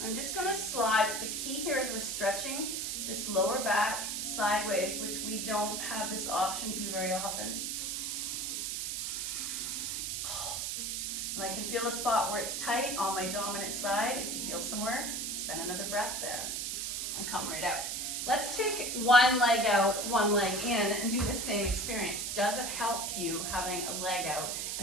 I'm just gonna slide. The key here is we're stretching this lower back sideways, which we don't have this option to very often. Oh. And I can feel a spot where it's tight on my dominant side. If you feel somewhere, spend another breath there and come right out. Let's take one leg out, one leg in, and do the same experience. Does it help you having a leg out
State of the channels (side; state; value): right; noise; hiss, 2 dB below the sound